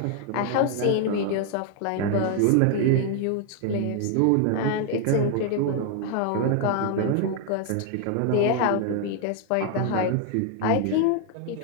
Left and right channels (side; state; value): both; different; correlation 0.00